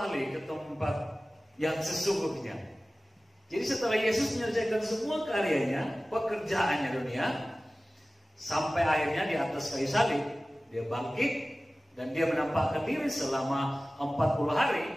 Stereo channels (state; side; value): normal; both; correlation 0.97